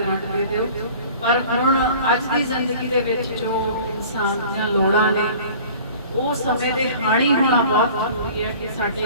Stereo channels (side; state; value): both; inverted; correlation -0.45